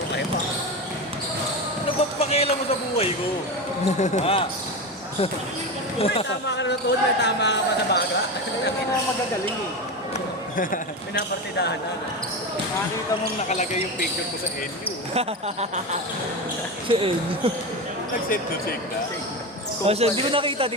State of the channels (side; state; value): both; normal; correlation 0.20